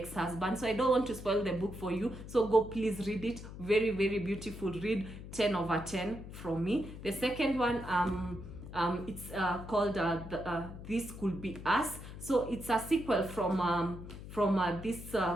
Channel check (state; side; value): noise; left; hum, 12 dB below the sound